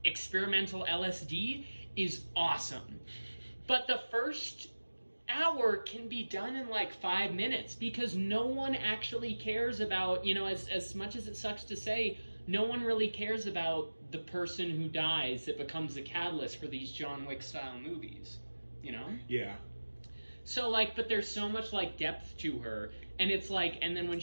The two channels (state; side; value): inverted; both; correlation -1.00